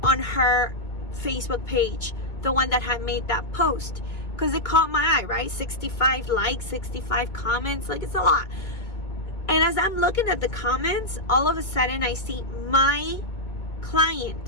on her Facebook page, the one that had made that post, because it caught my eye, right? 65 likes, 65 comments, like, it's a lot. And as I'm looking at the comments, all of a sudden I see my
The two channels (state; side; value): late; right; 2.2 ms